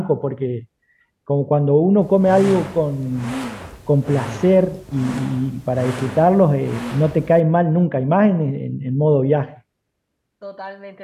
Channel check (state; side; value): identical; both; correlation 1.00